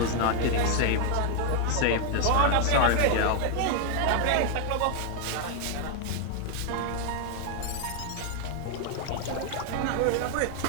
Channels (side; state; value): both; different; correlation 0.00